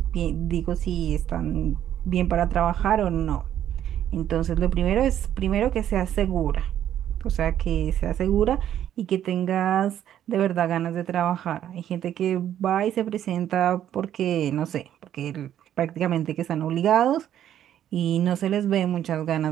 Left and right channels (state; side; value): quieter; left; 10.8 dB